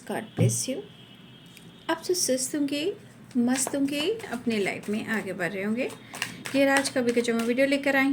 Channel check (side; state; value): both; identical; correlation 1.00